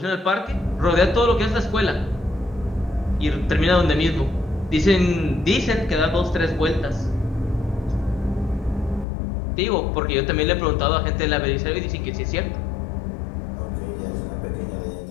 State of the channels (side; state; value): right; drops out; at 9.1 s